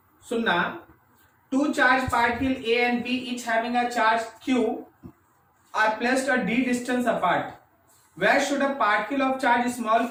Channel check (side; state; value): both; identical; correlation 1.00